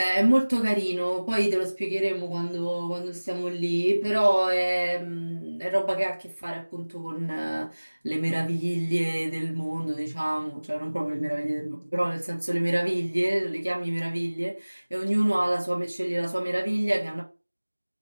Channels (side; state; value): both; inverted; correlation -1.00